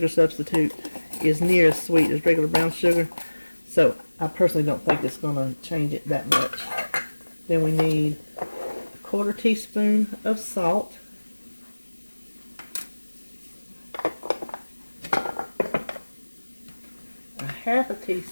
substitute is near as sweet as regular brown sugar, so I personally don't think it's going to change it that much. Then we need 1/4 teaspoon of salt. A 1/2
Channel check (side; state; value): both; inverted; correlation -1.00